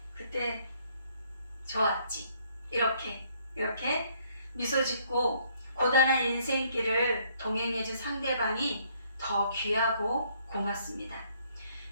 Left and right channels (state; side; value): inverted; both; correlation -0.66